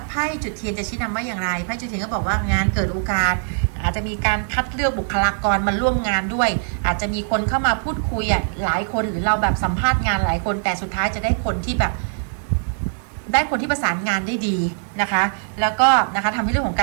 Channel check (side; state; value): left; silent; digital silence